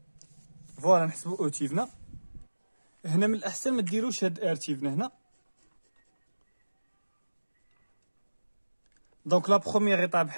فوالا نحسبوا او تيفنا. هنا من الاحسن ما ديروش هاد ار تيفنا هنا. دونك لا بروميير ايطاب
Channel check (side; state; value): both; inverted; correlation -1.00